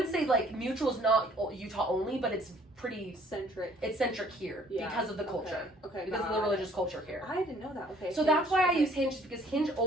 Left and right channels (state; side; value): normal; both; correlation 0.59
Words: say, like, Mutual's not Utah only, but it's pretty centric. It's centric here because of the culture. Okay. Because of the religious culture here. I didn't know that. Okay. So that's why I use Hinge, because Hinge